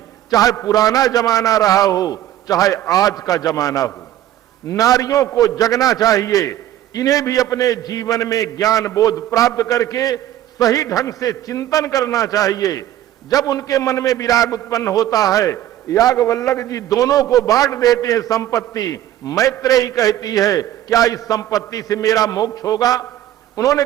चाहे पुराना जमाना रहा हो, चाहे आज का जमाना हो। नारियों को जगना चाहिए, इन्हें भी अपने जीवन में ज्ञान बोध प्राप्त करके सही ढंग से चिंतन करना चाहिए। जब उनके मन में विराग उत्पन्न होता है, याज्ञवल्क्य जी दोनों को बांट देते हैं संपत्ति। मैत्रेयी कहती है क्या इस संपत्ति से मेरा मोक्ष होगा? उन्होंने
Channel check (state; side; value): quieter; left; 12.7 dB